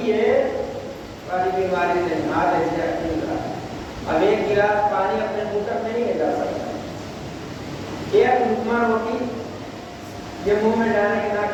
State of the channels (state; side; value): identical; both; correlation 1.00